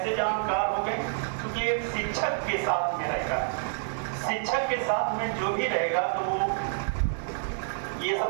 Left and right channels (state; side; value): silent; left; 59 dB below the other